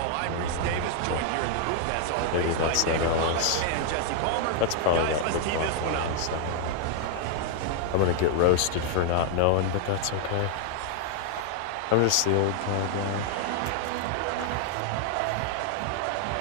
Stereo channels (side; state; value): both; different; correlation 0.00